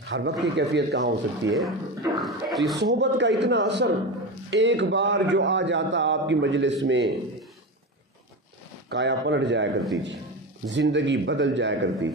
ہر وقت کی کیفیت کہاں ہو سکتی ہے؟ تو یہ صحبت کا اتنا اثر، ایک بار جو آ جاتا آپ کی مجلس میں کایا پلٹ جایا کرتی تھی، زندگی بدل جایا کرتی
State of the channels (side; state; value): both; normal; correlation 0.22